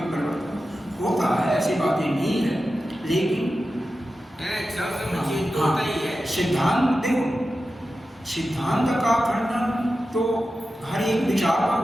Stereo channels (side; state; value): both; normal; correlation 0.92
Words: परिवर्तन होता है, ऐसी बातें नहीं है। लेकिन सिद्धांत देखो, सिद्धांत का खंडन तो हर एक विचार पर